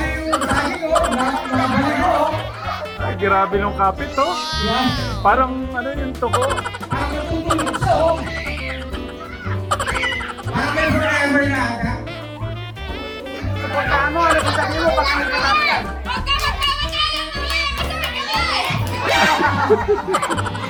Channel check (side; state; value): both; identical; correlation 1.00